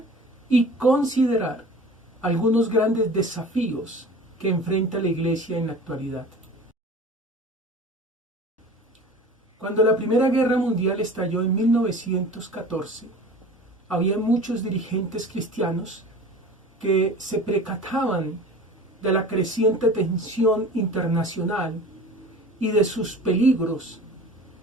y considerar algunos grandes desafíos que enfrenta la Iglesia en la actualidad. Cuando la Primera Guerra Mundial estalló en 1914, había muchos dirigentes cristianos que se percataban de la creciente tensión internacional y de sus peligros,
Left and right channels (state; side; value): normal; both; correlation 0.40